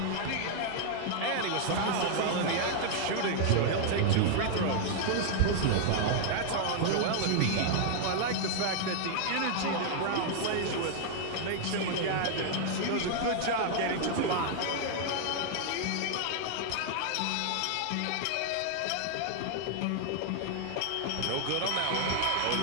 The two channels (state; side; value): different; both; correlation 0.00